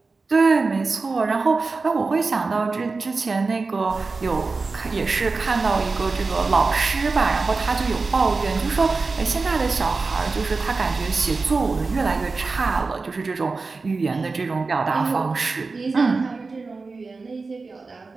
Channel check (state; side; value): quieter; left; 4.0 dB